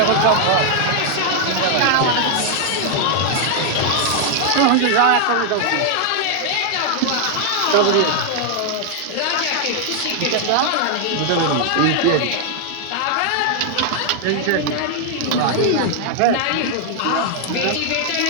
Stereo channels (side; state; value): both; different; correlation 0.00